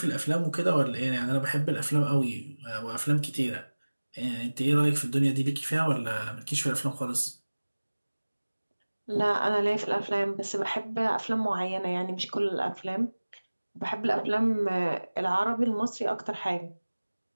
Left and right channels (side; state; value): both; inverted; correlation -1.00